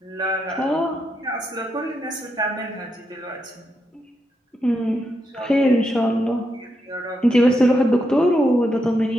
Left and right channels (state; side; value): normal; both; correlation 0.82